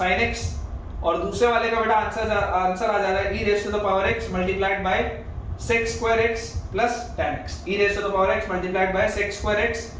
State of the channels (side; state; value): both; identical; correlation 1.00